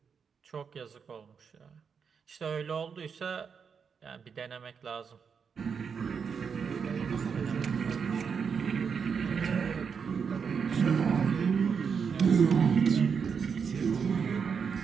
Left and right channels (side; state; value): left; quieter; 6.3 dB